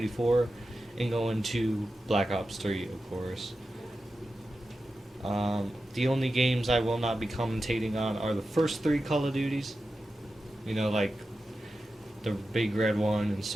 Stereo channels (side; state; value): both; normal; correlation 0.92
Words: 4 and going to Black Ops 3, of course. The only games I will not be commentating on are the first three Call of Duties. Like the big red one and